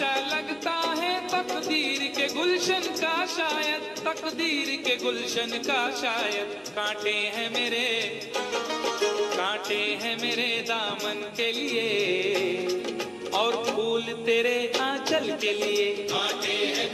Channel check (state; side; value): identical; both; correlation 1.00